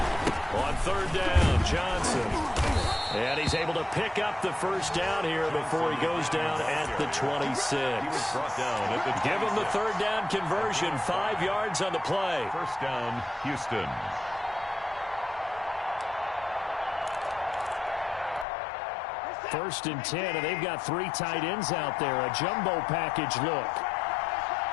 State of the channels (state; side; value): drops out; right; at 18.4 s